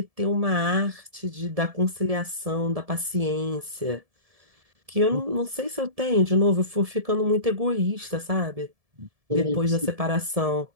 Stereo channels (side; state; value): left; late; 1.7 ms